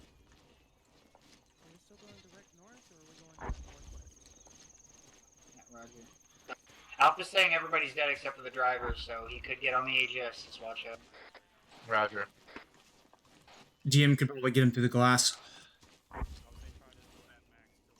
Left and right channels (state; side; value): identical; both; correlation 1.00